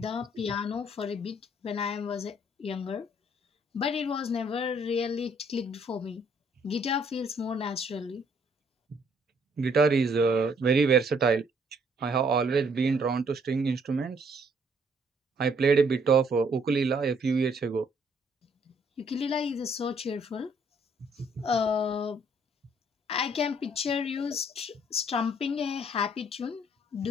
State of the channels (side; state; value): both; normal; correlation 0.65